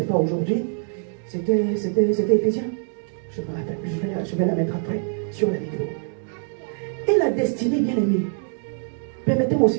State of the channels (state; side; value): silent; left; 63 dB below the other